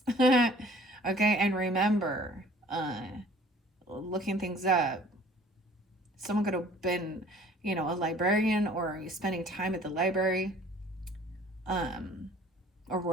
Okay, and remember, looking things up. Someone could have been, a librarian or spending time at the library. Or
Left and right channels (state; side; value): normal; both; correlation 0.53